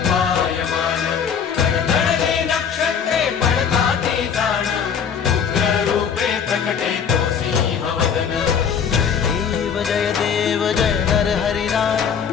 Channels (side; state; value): right; quieter; 7.2 dB